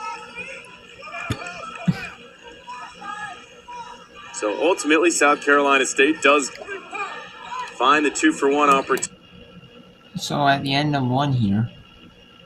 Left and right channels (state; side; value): identical; both; correlation 1.00